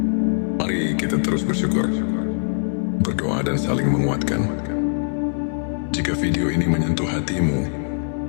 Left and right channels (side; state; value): right; silent; digital silence